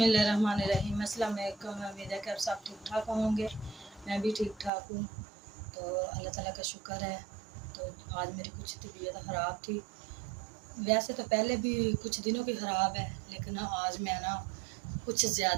अस्सलाम वालेकुम। उम्मीद है कि आप सब ठीक ठाक होंगे। मैं भी ठीक ठाक हूँ, तो अल्लाह ताला का शुक्र है। तो आज मेरी कुछ तबीयत ख़राब थी, वैसे तो पहले भी कुछ दिनों की ख़राब है, लेकिन आज मैं ना कुछ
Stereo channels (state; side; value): drops out; left; at 4.7 s